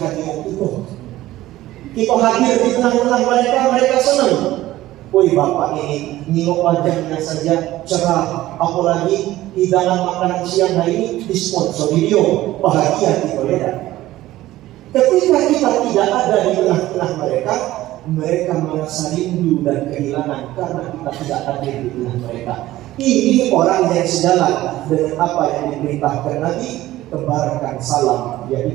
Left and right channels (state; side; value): quieter; left; 15.7 dB